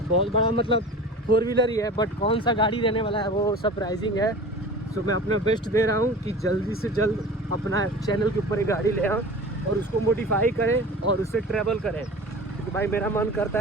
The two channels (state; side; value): normal; both; correlation 0.37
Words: बड़ा मतलब 4 व्हीलर ही है, बट कौन सा गाड़ी रहने वाला है वो सरप्राइजिंग है। सो मैं अपना बेस्ट दे रहा हूँ कि जल्दी से जल्द अपना चैनल के ऊपर एक गाड़ी ले आऊँ और उसको मॉडिफाई करें और उससे ट्रैवल करें। क्योंकि भाई मेरा मन